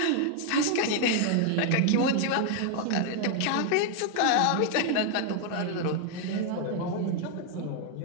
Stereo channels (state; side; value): different; both; correlation 0.00